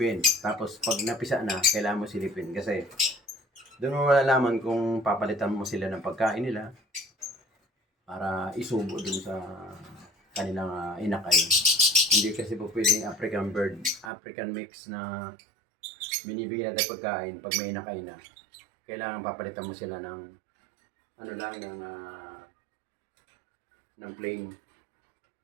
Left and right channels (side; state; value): left; drops out; at 14.1 s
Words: Tapos pag napisa na, kailangan mo silipin. Kasi doon mo malalaman kung papalitan mo sila ng pagkain nila para isubo dun sa kanilang inakay. Hindi kasi po pwedeng African bird, African mix na binibigyan natin pagkain pag may inakay na. Kailangan papalitan mo sila ng ano lang, ng plain